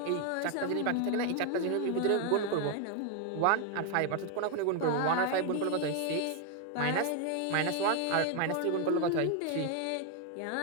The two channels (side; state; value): both; different; correlation 0.01